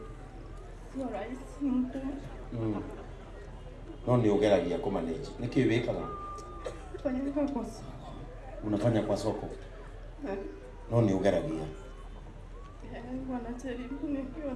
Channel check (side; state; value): both; identical; correlation 1.00